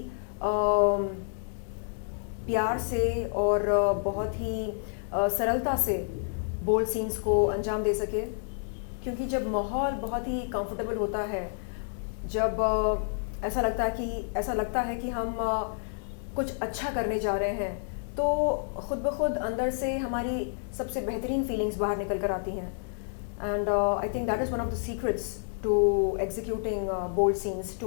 प्यार से और बहुत ही सरलता से बोल्ड सीन्स को अंजाम दे सके, क्योंकि जब माहौल बहुत ही कंफर्टेबल होता है, जब ऐसा लगता है कि हम कुछ अच्छा करने जा रहे हैं, तो ख़ुद ब खुद अंदर से हमारी सबसे बेहतरीन फीलिंग्स बाहर निकल कर आती हैं। And I think that is one of the secrets to executing bold scenes, to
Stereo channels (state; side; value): silent; right; digital silence